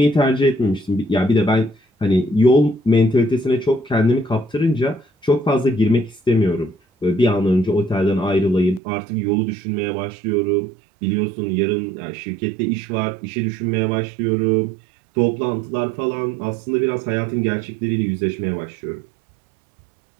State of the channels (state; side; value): drops out; left; at 8.8 s